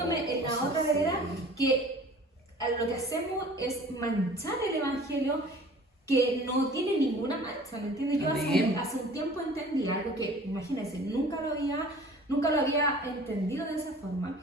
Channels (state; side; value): normal; both; correlation 0.47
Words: en la otra vereda, que lo que hacemos es manchar el evangelio que no tiene ninguna mancha, ¿me entiendes? Yo hace un tiempo entendí algo que, imagínense, nunca lo había entendido de esa forma,